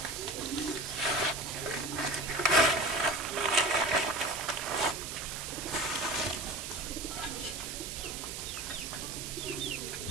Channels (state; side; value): noise; right; hiss, 6 dB below the sound